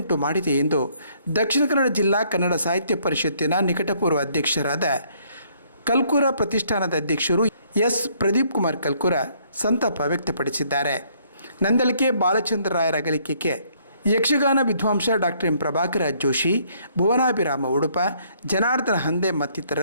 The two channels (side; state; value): both; inverted; correlation -0.66